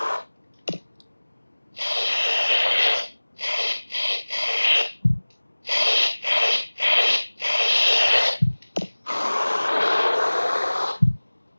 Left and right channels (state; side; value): inverted; both; correlation -1.00